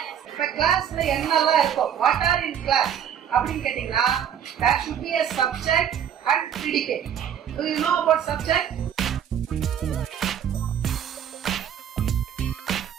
இப்ப கிளாஸ்ல என்னெல்லாம் இருக்கும்? வாட் ஆர் இன் கிளாஸ் அப்படின்னு கேட்டீங்கன்னா there should be a subject and predicate. Do you know about subject?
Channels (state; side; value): quieter; left; 9.0 dB